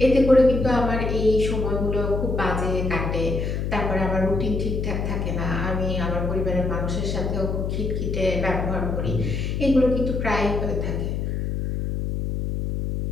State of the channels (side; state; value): left; noise; hum, 1 dB below the sound